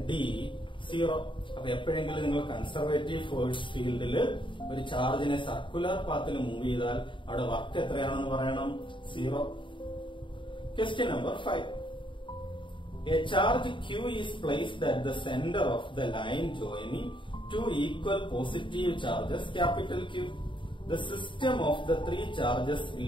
D 0. അപ്പൊ എപ്പോഴെങ്കിലും നിങ്ങൾ കൺസർവേറ്റീവ് ഫോഴ്സ് ഫീൽഡിൽ ഒരു ചാർജിനെ സർക്കുലർ പാത്തിൽ മൂവ് ചെയ്താൽ അവിടെ വർക്ക് എത്രയാണെന്ന് പറയണം, 0. Question number 5. A charge Q is placed at the center of the line joining two equal positive charges capital Q. The system of the three charges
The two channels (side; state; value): right; late; 0.24 ms